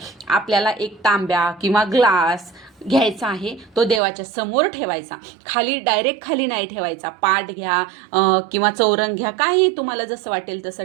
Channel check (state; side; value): drops out; left; at 4.0 s